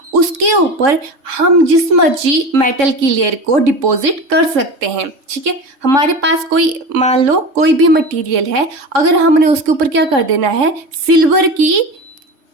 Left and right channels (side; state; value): left; late; 3.6 ms